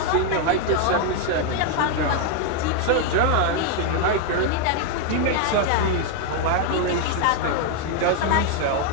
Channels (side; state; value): both; different; correlation 0.00